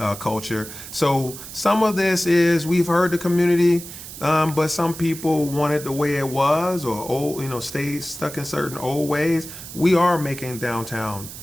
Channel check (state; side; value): noise; right; hiss, 12 dB below the sound